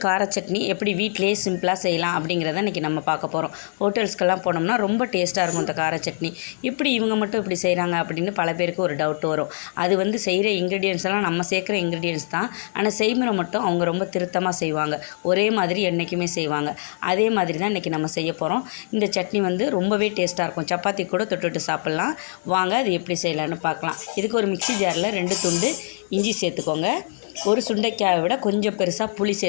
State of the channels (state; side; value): silent; right; digital silence